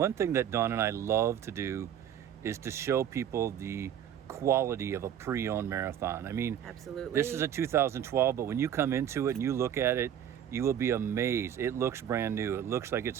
thing that Dawn and I love to do is to show people the quality of a pre-owned marathon. I mean, absolutely. This is a 2012, but when you come into it and you look at it, you will be amazed. It looks brand new. It looks like it's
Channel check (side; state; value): left; quieter; 9.7 dB